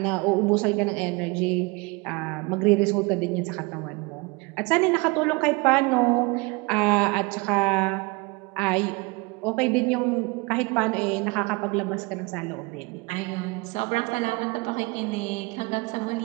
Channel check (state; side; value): quieter; left; 27.0 dB